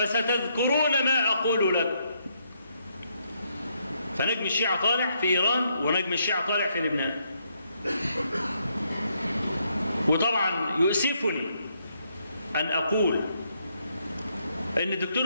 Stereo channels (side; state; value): both; inverted; correlation -0.75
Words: ما أقول لكم. فنجم الشيعة طالع في إيران، ونجم الشيعة طالع في لبنان. وطبعا يؤسفني أن أقول إن الدكتور